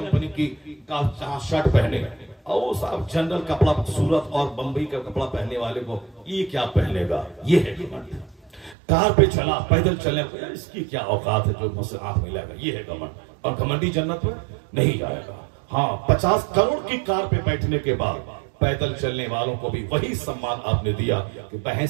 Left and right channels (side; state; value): left; drops out; at 8.8 s